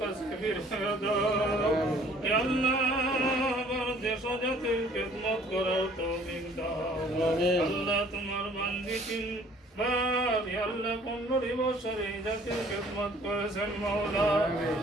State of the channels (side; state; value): both; normal; correlation 0.56